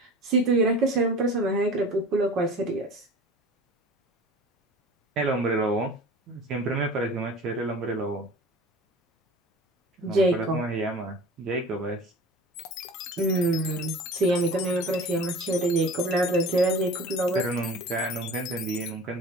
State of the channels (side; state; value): both; normal; correlation 0.40